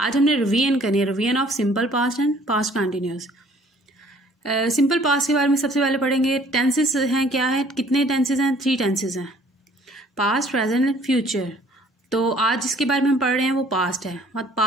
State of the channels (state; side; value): normal; both; correlation 0.57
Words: आज हमने रिवीजन करनी है, revision of simple past and past continuous. Simple past के बारे में सबसे पहले पढ़ेंगे। टेंसेस हैं, क्या है, कितने टेंसेस हैं? 3 टेंसेस हैं, पास्ट, प्रेजेंट एंड फ्यूचर। तो आज जिसके बारे में हम पढ़ रहे हैं वो पास्ट है, मतलब